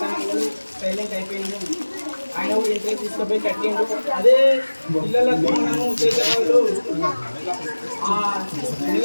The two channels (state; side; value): inverted; both; correlation -1.00